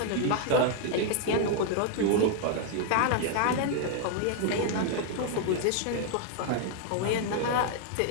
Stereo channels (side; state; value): both; different; correlation 0.00